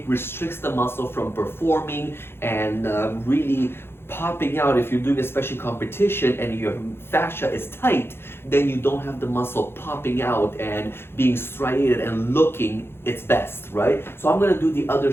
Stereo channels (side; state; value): right; late; 0.11 ms